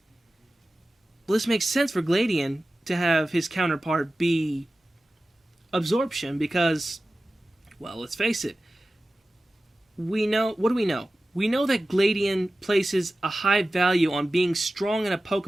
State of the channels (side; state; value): both; normal; correlation 0.95